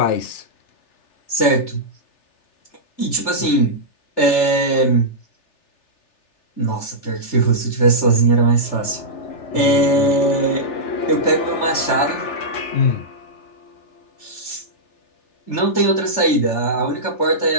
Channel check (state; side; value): late; right; 3.4 ms